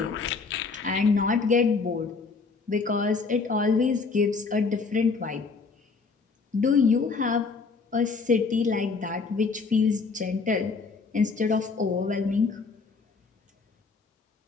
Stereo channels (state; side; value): quieter; right; 4.5 dB